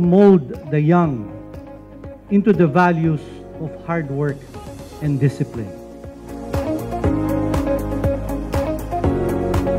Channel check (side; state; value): both; identical; correlation 1.00